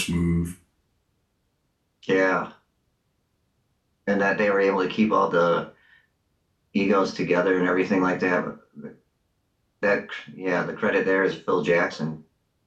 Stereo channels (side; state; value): both; identical; correlation 1.00